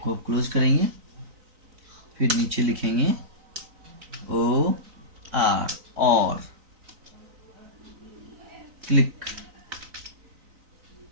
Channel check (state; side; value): late; left; 3.9 ms